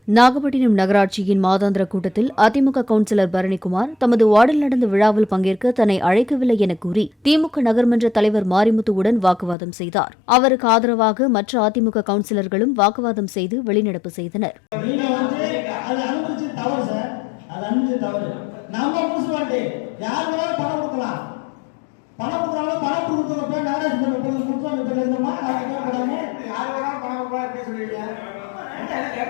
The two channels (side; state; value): right; drops out; at 9.6 s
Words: நாகப்பட்டினம் நகராட்சியின் மாதாந்திர கூட்டத்தில் அதிமுக கவுன்சிலர் பரணிக்குமார் தமது வார்டில் நடந்த விழாவில் பங்கேற்க தன்னை அழைக்கவில்லை என கூறி திமுக நகர்மன்ற தலைவர் மாரிமுத்துவுடன் வாக்குவாதம் செய்தார். அவருக்கு ஆதரவாக மற்ற அதிமுக கவுன்சிலர்களும் வாக்குவாதம் செய்து வெளிநடப்பு செய்தனர்.